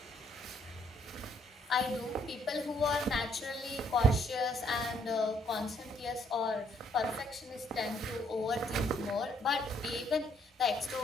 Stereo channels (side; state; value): both; normal; correlation 0.68